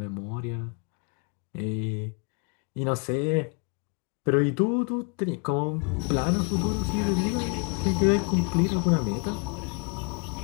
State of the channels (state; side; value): quieter; right; 35.1 dB